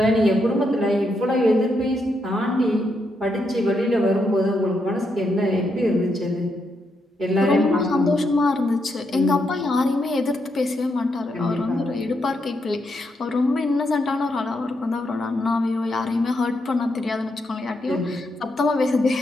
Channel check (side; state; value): both; normal; correlation 0.80